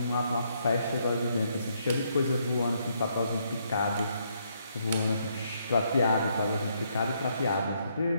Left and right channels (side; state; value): both; inverted; correlation -0.73